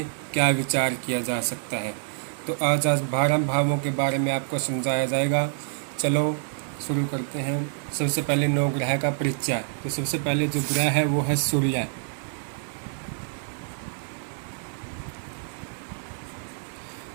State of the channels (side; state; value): left; silent; digital silence